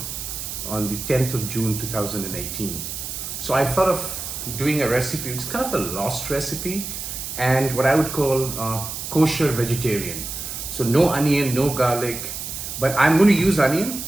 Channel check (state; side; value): noise; right; hiss, 7 dB below the sound